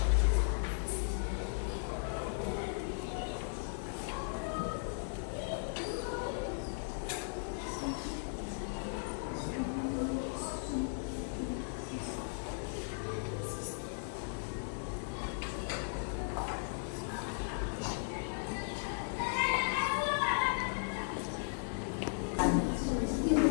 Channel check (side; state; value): right; silent; digital silence